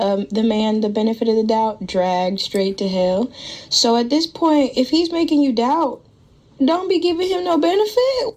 man the benefit of the doubt, dragged straight to hell. So at this point, if he's making you doubt, don't be giving him no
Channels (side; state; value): both; identical; correlation 1.00